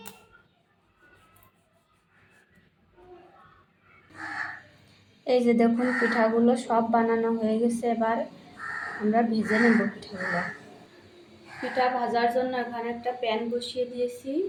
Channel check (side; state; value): both; identical; correlation 1.00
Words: এই যে দেখুন পিঠাগুলো সব বানানো হয়ে গেছে। এবার আমরা ভেজে নেব পিঠাগুলো। পিঠা ভাজার জন্য এখানে একটা প্যান বসিয়ে দিয়েছি।